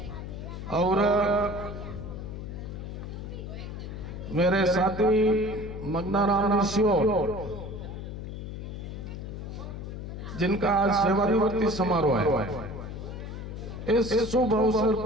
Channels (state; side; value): noise; left; hum, 8 dB below the sound